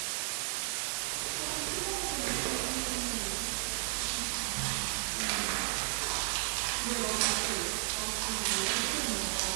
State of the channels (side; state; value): left; silent; 55 dB below the other